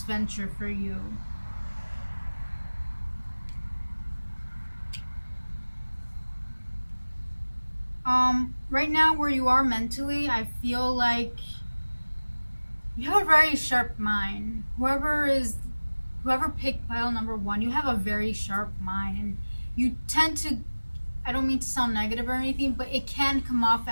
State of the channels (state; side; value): inverted; both; correlation -1.00